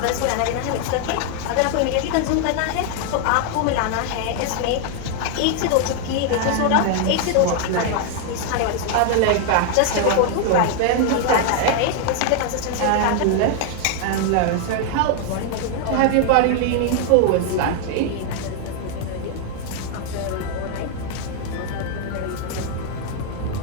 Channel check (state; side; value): different; both; correlation 0.00